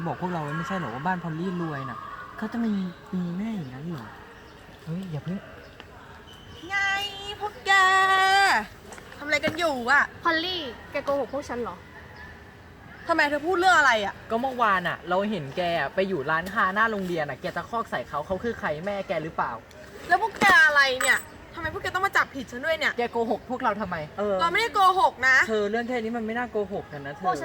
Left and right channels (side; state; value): both; identical; correlation 1.00